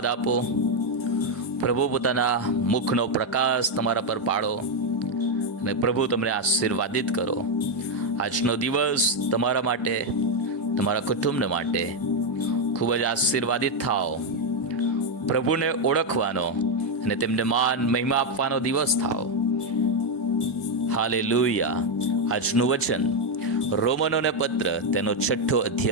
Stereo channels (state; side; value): normal; both; correlation 0.03